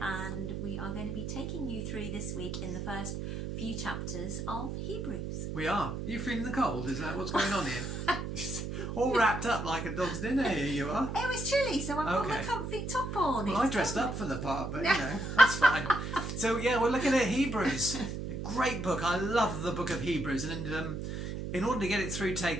we are going to be taking you through this week in the first few chapters of Hebrews. We are. Are you feeling the cold? Is that what's going on here? All wrapped up like a dog's dinner, here you are. It was chilly, so I've got my comfy top on. Well, I dressed up for the part, but you know, that's fine. So yeah, we're looking at Hebrews. A great book. I love the book of Hebrews, and in order to get it through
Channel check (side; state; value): right; noise; hum, 5 dB below the sound